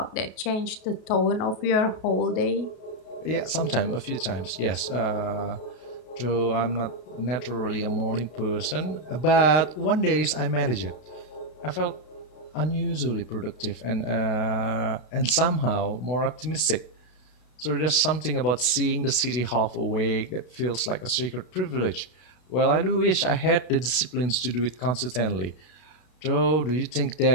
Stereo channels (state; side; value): late; right; 32 ms